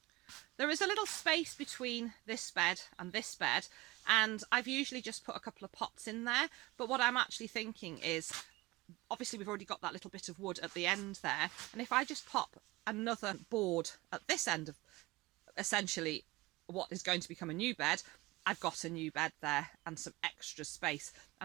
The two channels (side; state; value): left; quieter; 20.8 dB